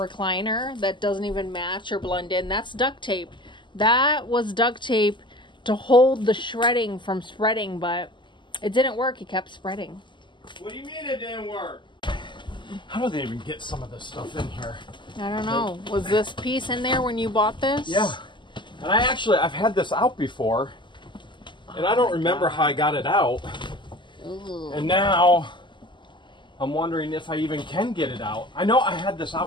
that doesn't even match or blend in, that's duct tape. That was duct tape to hold the shredding from spreading, but it didn't work. It kept spreading. What do you mean it didn't work? How do they even get some of this stuff in here? I don't know. Was this piece in there when you bought this? Yeah. And I've had this out before, and I don't remember how I got it out. Ooh. And now, I'm wondering if I even can get it out. I know I had this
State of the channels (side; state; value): right; late; 0.23 ms